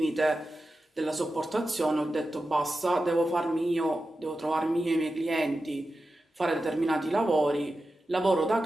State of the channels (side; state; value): both; normal; correlation 0.92